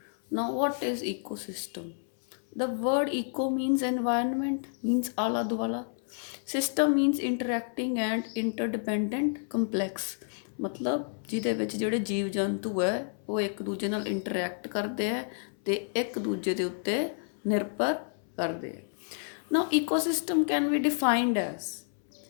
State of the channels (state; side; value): silent; right; 58 dB below the other